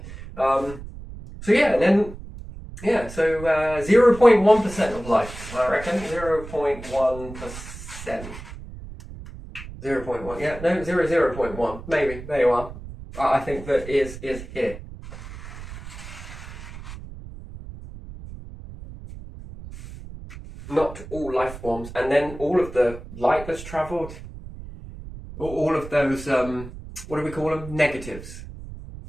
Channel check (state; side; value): noise; right; rumble, 13 dB below the sound